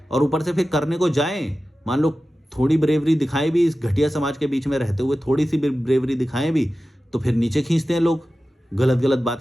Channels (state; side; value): normal; both; correlation 0.94